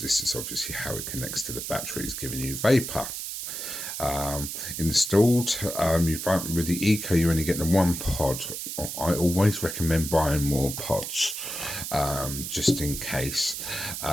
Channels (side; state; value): right; noise; hiss, 6 dB below the sound